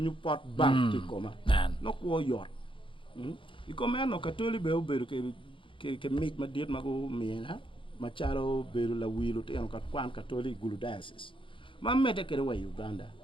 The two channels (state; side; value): late; right; 0.25 ms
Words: pot bank ti koma no ko yor ikoma no katoli be oberu ke meet ma dit mago miena ma charo beru la wilu te no kat kwan katoli gulu diocese ma mete kere wa Uganda